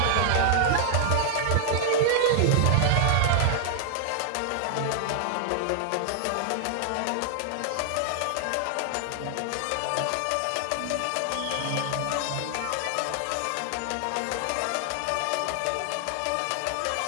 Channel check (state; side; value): different; both; correlation 0.00